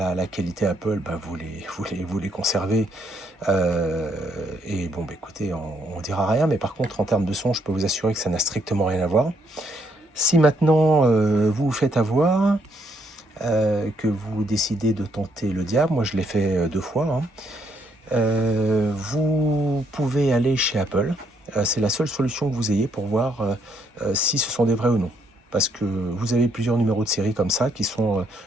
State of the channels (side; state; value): both; normal; correlation 0.72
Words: qualité Apple, vous les conservez. Et bon, écoutez, on dira rien, mais par contre, en termes de son, je peux vous assurer que ça n'a strictement rien à voir. Si maintenant vous vous faites avoir, que vous décidez de tenter le diable, moi je l'ai fait 2 fois, hein, vous pouvez aller chez Apple. C'est la seule solution que vous ayez pour voir si ce sont des vrais ou non. Parce que vous avez plusieurs numéros de série comme ça qui sont